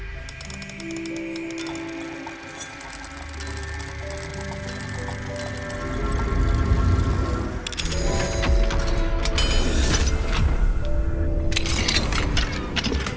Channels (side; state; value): both; identical; correlation 1.00